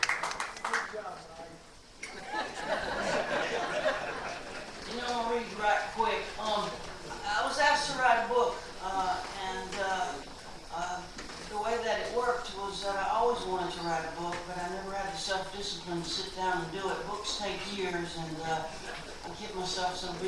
You know, I'll read right quick. I was asked to write a book, and the way that it worked was that I always wanted to write a book, but I never had the self-discipline to sit down and do it. Books take years, and I kept myself so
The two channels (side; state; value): both; identical; correlation 1.00